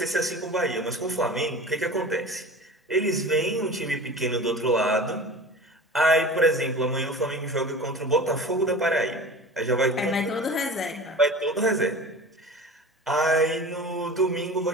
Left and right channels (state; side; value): normal; both; correlation 0.37